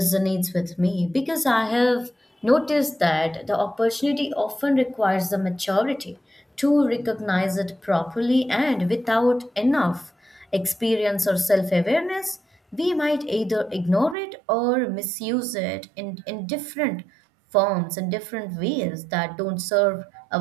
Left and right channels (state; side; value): drops out; left; at 14.2 s